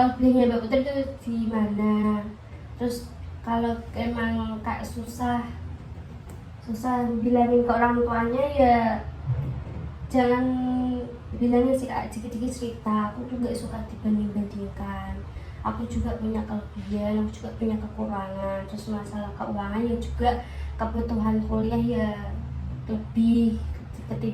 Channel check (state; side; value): identical; both; correlation 1.00